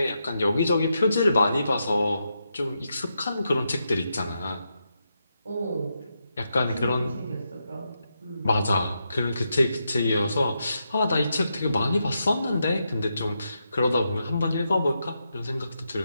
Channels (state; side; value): inverted; both; correlation -0.84